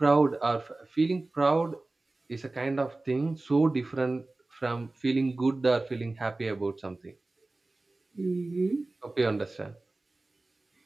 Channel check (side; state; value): left; quieter; 3.0 dB